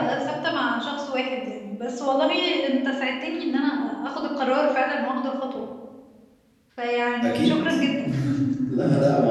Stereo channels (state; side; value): identical; both; correlation 1.00